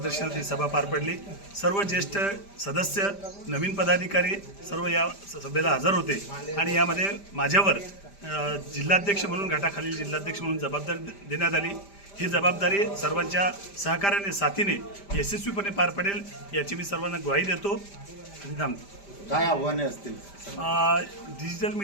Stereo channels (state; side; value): late; right; 5.0 ms